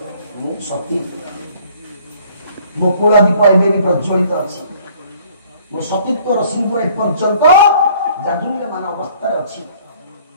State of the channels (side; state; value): both; inverted; correlation -0.57